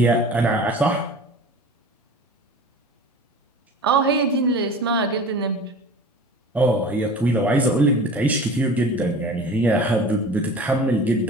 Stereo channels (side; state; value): both; normal; correlation 0.40